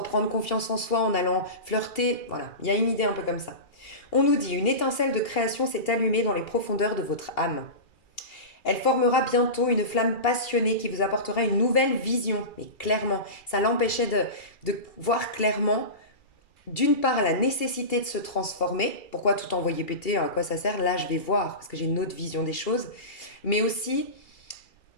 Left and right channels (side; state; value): right; late; 2.8 ms